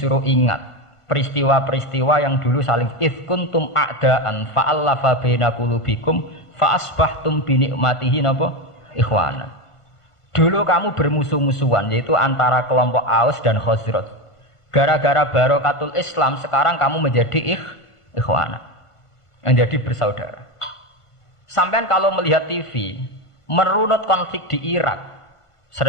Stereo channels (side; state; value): right; late; 1.5 ms